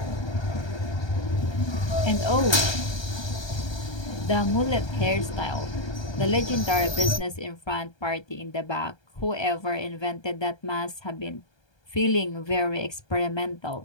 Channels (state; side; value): late; right; 1.3 ms